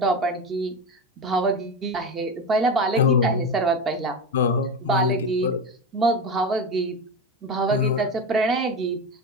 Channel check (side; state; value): both; normal; correlation 0.21